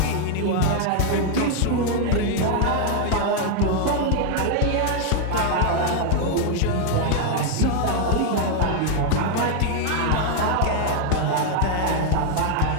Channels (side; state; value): both; different; correlation 0.00